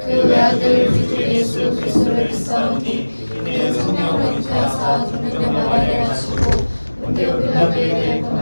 그 외아들 우리 주 예수 그리스도를 믿사오니 이는 성령으로 잉태하사 동정녀 마리아를 하시고 본디오 빌라도에 대해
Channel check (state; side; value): inverted; both; correlation -1.00